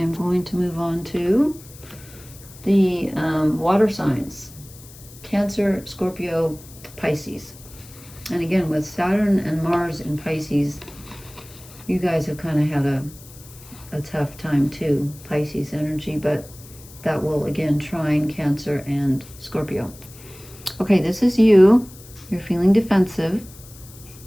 going to move on to the water signs. Cancer, Scorpio, Pisces. And again, with Saturn and Mars in Pisces, you guys have kind of had a tough time too, Pisces energy, but that will again trine Cancer and Scorpio. Okay, this is you. You're feeling defensive.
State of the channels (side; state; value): left; noise; hiss, 20 dB below the sound